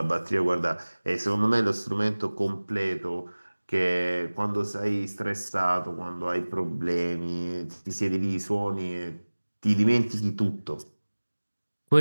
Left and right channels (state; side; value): inverted; both; correlation -1.00